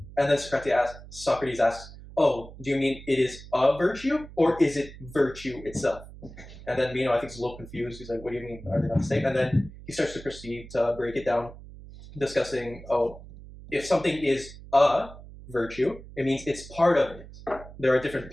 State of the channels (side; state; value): right; noise; hum, 16 dB below the sound